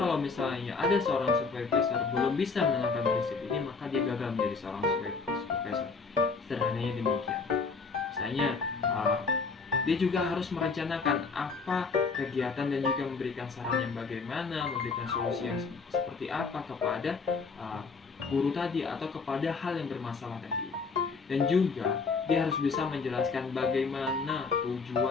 misalnya ada seorang supervisor belum bisa menerapkan prinsip ini, maka dia gagal menjadi seorang supervisor. Sederhananya demikian. Misalnya dia juga harus merencanakan apa kegiatan dan juga memberikan saran yang bagaimana, memberikan solusi yang seperti apa kepada guru tadi atau kepada hal yang bermasalah tadi. Dan juga dia harus bisa menjelaskan bagaimana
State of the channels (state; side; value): quieter; right; 4.6 dB